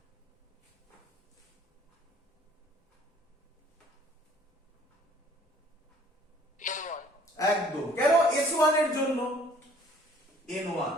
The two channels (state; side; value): normal; both; correlation 0.56